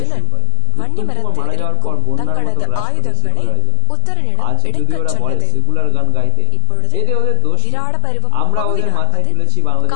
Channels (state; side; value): different; both; correlation 0.01